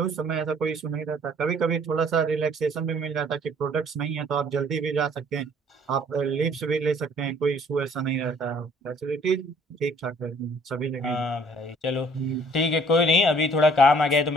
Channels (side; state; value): both; normal; correlation 0.58